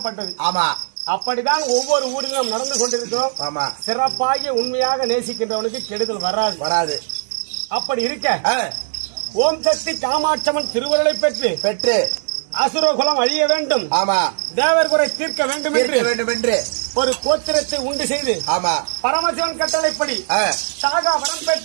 ஆமா, அப்படிதான் ஒவ்வொரு ஊரிலும் நடந்து கொண்டிருக்கிறோம். ஆமா, சிறப்பாக உண்மையாக நேசிக்கின்றவனுக்கு கெடுதல் வராது. அப்படி இருக்க ஓம் சக்தி காமாட்சம்மன் திருவருளை பெற்று அசுரகுலம் அழிய வேண்டும், ஆமா, தேவர் குறை தீர்க்க வேண்டும் என்று ஒரு கோத்திரத்தை உண்டு செய்து, ஆமா, பரமசிவன் கட்டளைப்படி சாகா வரம்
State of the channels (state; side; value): silent; left; 66 dB below the other